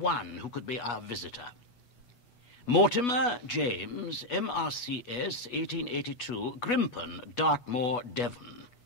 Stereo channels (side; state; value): right; late; 8.2 ms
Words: who could be our visitor. Mortimer James, MRCS, 1882, Grimpen, Dartmoor, Devon.